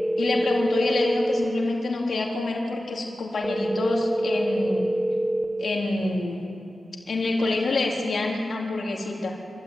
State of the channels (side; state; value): both; normal; correlation 0.94